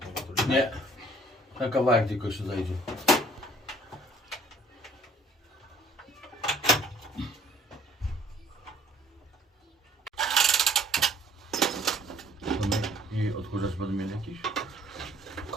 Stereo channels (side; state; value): both; normal; correlation 0.57